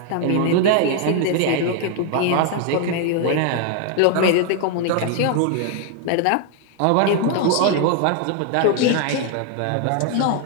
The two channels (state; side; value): different; both; correlation 0.00